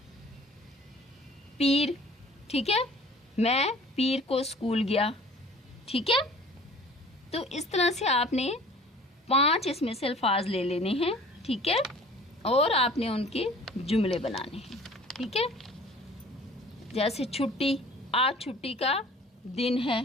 پیر، ٹھیک ہے، میں پیر کو اسکول گیا، ٹھیک ہے؟ تو اس طرح سے آپ نے 5 اس میں سے الفاظ لے لینے ہیں، ٹھیک ہے؟ اور آپ نے ان کے جملے بنانے ہیں، ٹھیک ہے؟ جیسے چھٹی، آج چھٹی کا دن ہے،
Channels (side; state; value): both; normal; correlation 0.49